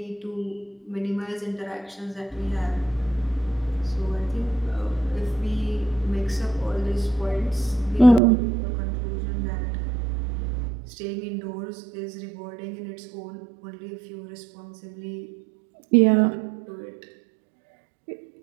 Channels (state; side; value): drops out; left; at 8.2 s